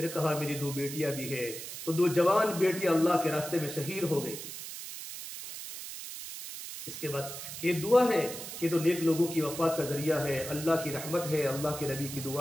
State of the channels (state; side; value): noise; right; hiss, 9 dB below the sound